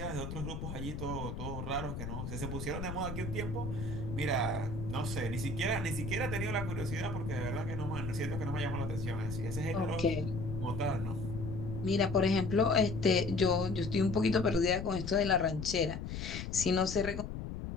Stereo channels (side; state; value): left; noise; rumble, 6 dB below the sound